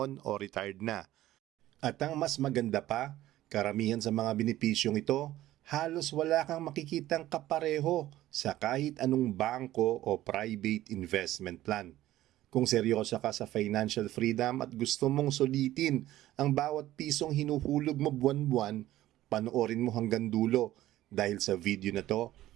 o retired na. At ang mas maganda pa, karamihan sa mga benepisyong ito, halos wala kang makikitang kapareho sa kahit anong bangko o private investment plan. Kung seryoso ka sa financial freedom at gusto mong sulitin ang bawat pisong hinuhulog mo buwan-buwan, panoorin mo hanggang dulo dahil sa video na to,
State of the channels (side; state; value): left; quieter; 14.7 dB